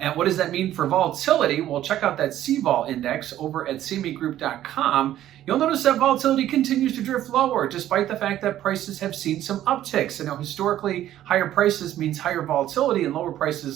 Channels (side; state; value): left; quieter; 12.6 dB